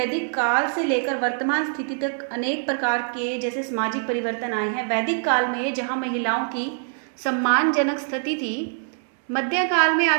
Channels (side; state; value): left; silent; digital silence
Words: काल से लेकर वर्तमान स्थिति तक अनेक प्रकार के जैसे सामाजिक परिवर्तन आए हैं। वैदिक काल में जहां महिलाओं की सम्मानजनक स्थिति थी, मध्यकाल में